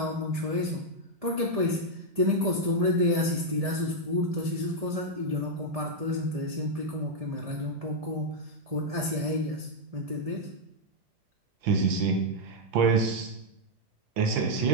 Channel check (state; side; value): late; left; 1.7 ms